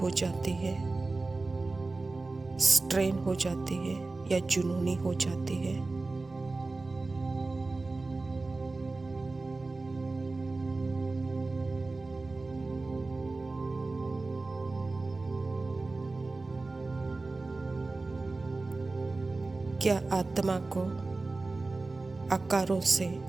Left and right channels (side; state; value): left; quieter; 3.5 dB